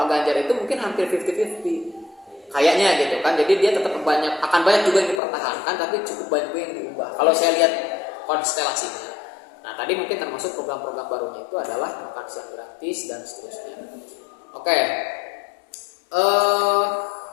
Ganjar itu mungkin hampir 50-50 kayaknya gitu kan. Jadi dia tetap akan banyak juga yang dipertahankan, tapi cukup banyak juga yang diubah. Kalau saya lihat konstelasinya. Nah tadi mungkin termasuk program-program barunya itu adalah makan siang gratis dan seterusnya. Oke.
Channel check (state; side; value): drops out; right; at 5.2 s